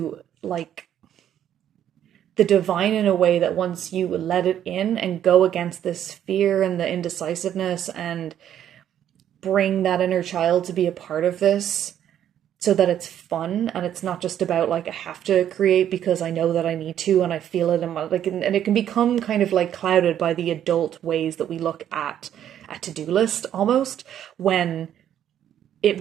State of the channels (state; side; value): quieter; left; 10.4 dB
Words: like the divine in a way that once you let it in and go against this fear and the indecisiveness and bring that inner child to be a part of this, so that it's fun and it's not just about like, I have to create because I know that I need to and I feel it in my like, and it can become kind of like clouded by the adult ways that we look at a to-do list almost, when it